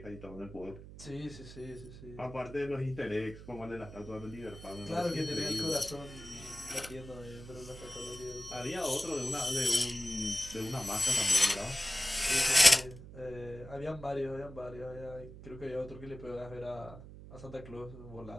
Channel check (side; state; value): right; noise; hum, 15 dB below the sound